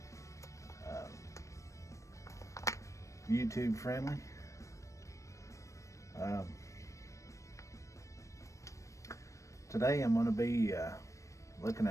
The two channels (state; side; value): late; right; 0.15 ms